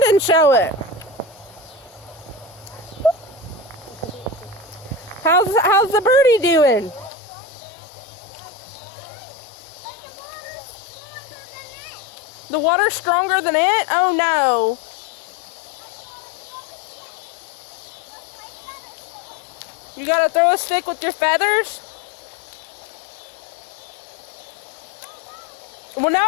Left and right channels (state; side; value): drops out; right; at 7.1 s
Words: and show it. How's the birdie doing? The water's stronger than it? Oh no. You gotta throw a stick with your feathers? Well,